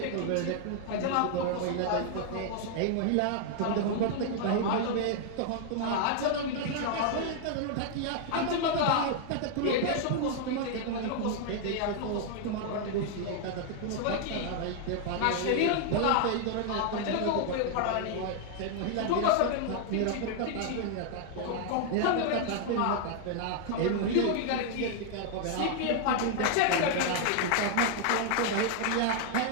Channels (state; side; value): different; both; correlation 0.00